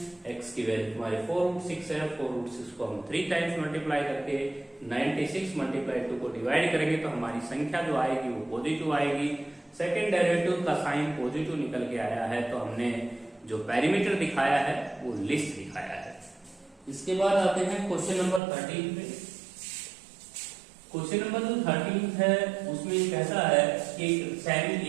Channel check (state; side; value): drops out; left; at 18.4 s